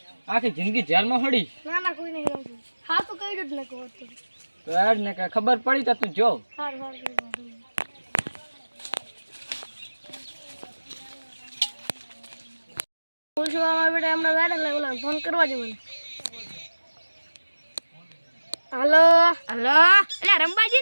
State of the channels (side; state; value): both; inverted; correlation -1.00